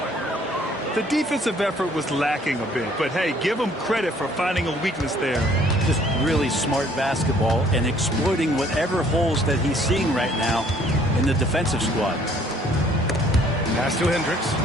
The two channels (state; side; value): normal; both; correlation 0.60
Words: The defensive effort was lacking a bit, but hey, give them credit for finding a weakness there. Just really smart basketball and exploiting whatever holes that he's seeing right now in the defensive squad. Pass to Hendricks.